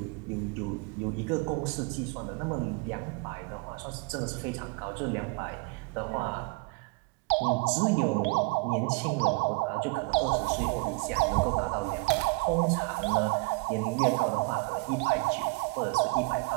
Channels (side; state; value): left; quieter; 28.3 dB